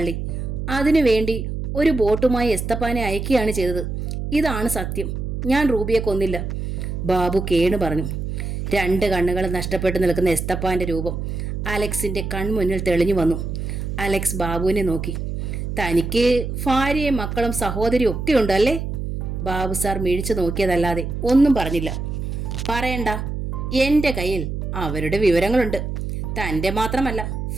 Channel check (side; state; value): right; noise; hum, 4 dB below the sound